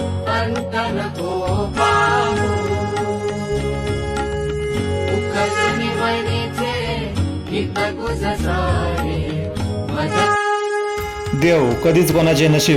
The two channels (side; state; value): both; identical; correlation 1.00